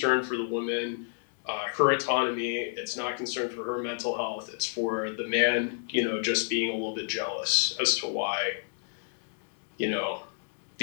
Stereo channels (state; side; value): silent; right; digital silence